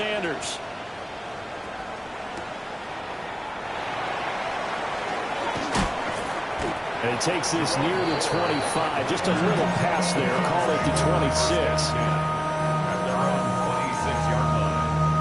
And he takes this near the 25. Just a little pass there. Call it the 26. At their own 26-yard line.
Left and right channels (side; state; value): both; identical; correlation 1.00